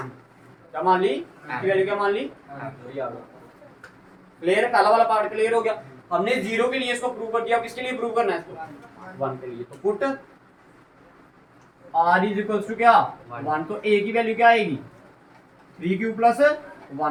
क्या मान ली? इसकी वैल्यू क्या मान ली? क्लियर है? पहला वाला पार्ट क्लियर हो गया। हमने 0 के लिए इसको प्रूव कर दिया। अब किसके लिए प्रूव करना है इसको? 1 के लिए। तो put r is equals to क्या? 1। तो a की वैल्यू क्या आएगी? 3q plus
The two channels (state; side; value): identical; both; correlation 1.00